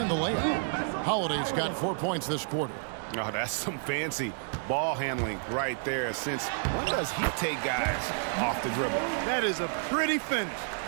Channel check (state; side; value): silent; left; 58 dB below the other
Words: the layup. Holiday's got 4 points this quarter. Oh, that's some fancy ball handling right there. Since when does he take guys off the dribble? That is a pretty finish.